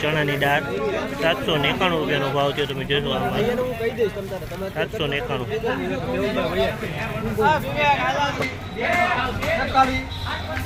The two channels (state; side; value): identical; both; correlation 1.00